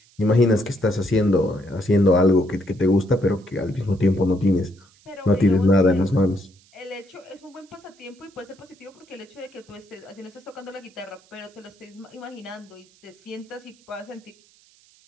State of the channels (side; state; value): right; noise; hiss, 30 dB below the sound